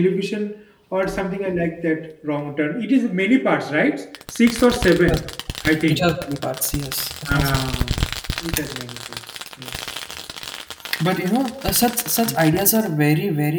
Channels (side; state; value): both; identical; correlation 1.00